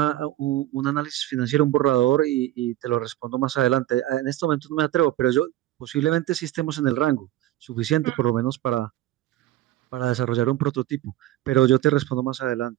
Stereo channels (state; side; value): quieter; left; 14.6 dB